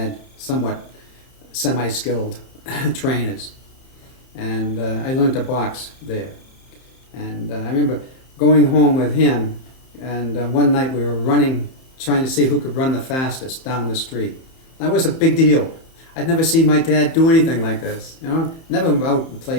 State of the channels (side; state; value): right; late; 31 ms